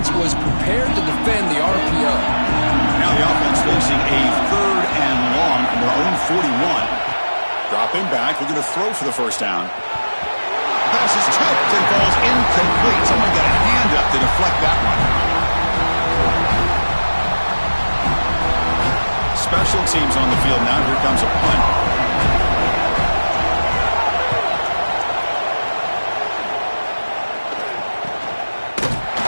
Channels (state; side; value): inverted; both; correlation -1.00